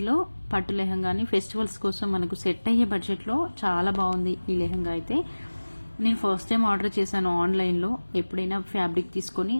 పట్టు లెహంగాని ఫెస్టివల్స్ కోసం మనకు సెట్ అయ్యే బడ్జెట్లో చాలా బాగుంది ఈ లెహంగా అయితే. నేను ఫస్ట్ టైం ఆర్డర్ చేశాను ఆన్లైన్లో. ఎప్పుడైనా ఫ్యాబ్రిక్ తీసుకొని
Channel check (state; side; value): inverted; both; correlation -1.00